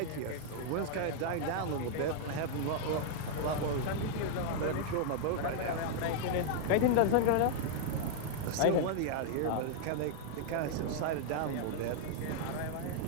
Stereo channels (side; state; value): both; different; correlation -0.01